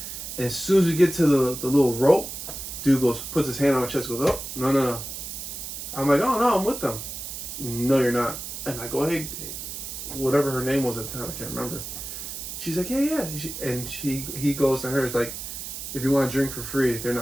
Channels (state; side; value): noise; right; hiss, 8 dB below the sound